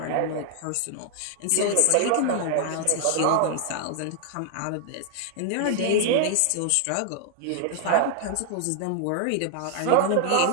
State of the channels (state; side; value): different; both; correlation 0.00